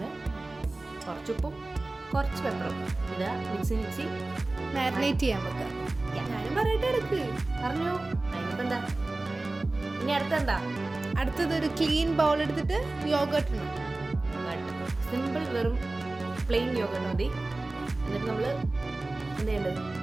കുറച്ചുപ്പും കുറച്ച് പെപ്പറും ഇടുക, മിക്സി മാരിനേറ്റ് ചെയ്യാൻ വെക്കാം. ഞാനും പറയട്ടെ, എടുക്ക് പറഞ്ഞു. അതിനിപ്പോൾ എന്താ ഇനി അടുത്തെന്താ? അടുത്തത് ഒരു ക്ലീൻ ബൗൾ എടുത്തിട്ട് യോഗർട്ട് ഇടണം. സിമ്പിൾ, വെറും പ്ലെയിൻ യോഗർട്ട് മതി. എന്നിട്ട് നമ്മൾ എന്ത് ചെയ്യേണ്ടത്?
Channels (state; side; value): quieter; left; 3.0 dB